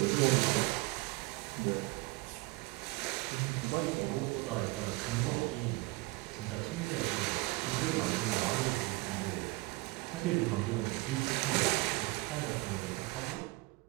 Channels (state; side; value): quieter; left; 23.3 dB